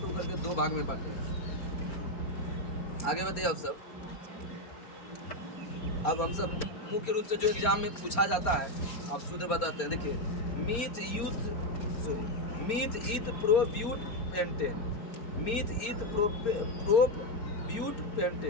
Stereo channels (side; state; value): right; late; 4.3 ms